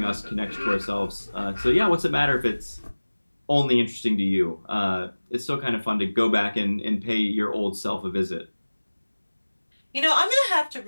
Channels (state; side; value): inverted; both; correlation -1.00